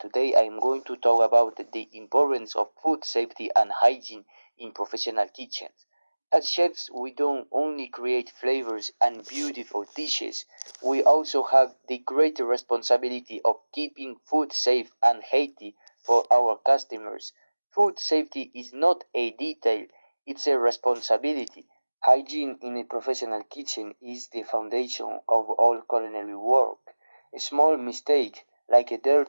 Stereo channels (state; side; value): inverted; both; correlation -1.00